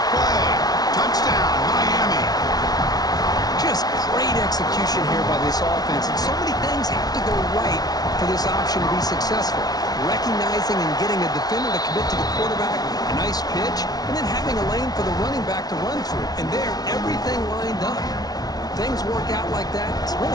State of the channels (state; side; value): late; right; 0.19 ms